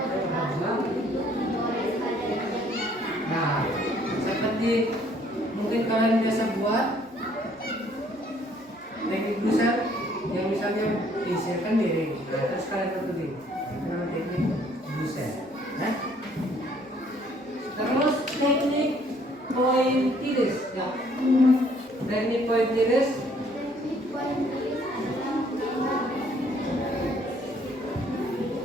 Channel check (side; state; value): both; normal; correlation 0.62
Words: Nah, seperti mungkin kalian biasa buat teknik dusel yang misalnya diisikan miring. Nah, terus kalian tentuin nama teknik dusel. Nah, terus teknik pointillis. Ya. Teknik pointillis.